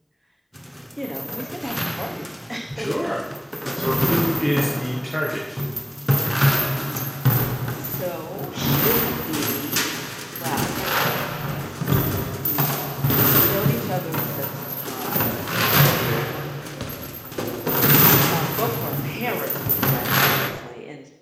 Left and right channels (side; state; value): both; identical; correlation 1.00